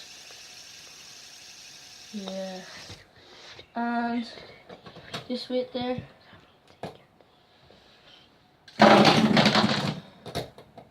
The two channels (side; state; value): both; identical; correlation 1.00